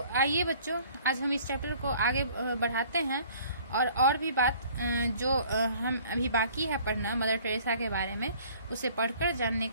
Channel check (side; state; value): both; inverted; correlation -0.54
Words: आइए बच्चों, आज हम इस चैप्टर को आगे बढ़ाते हैं और भी बात जो हम अभी बाकी है पढ़ना मदर टेरेसा के बारे में, उसे पढ़कर जानने